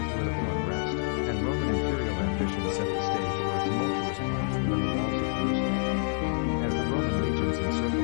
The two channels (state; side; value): silent; right; digital silence